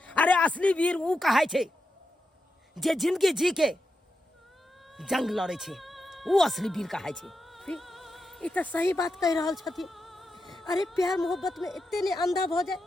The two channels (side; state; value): both; normal; correlation 0.87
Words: अरे असली वीर उ कहाय छै जे जिंदगी जी के जंग लड़े छै, उ असली वीर कहाय छै। ई तो सही बात कह रहल छथिन। अरे प्यार मोहब्बत में इतने ने अंधा भ जाए